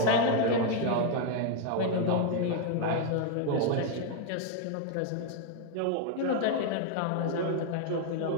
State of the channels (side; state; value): both; different; correlation 0.00